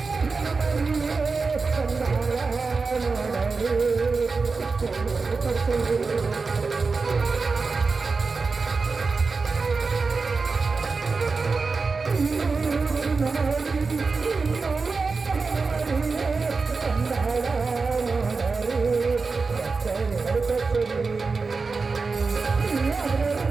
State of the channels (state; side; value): quieter; left; 4.4 dB